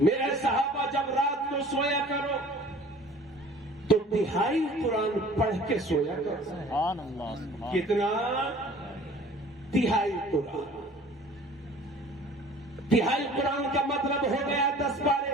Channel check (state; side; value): normal; both; correlation 0.48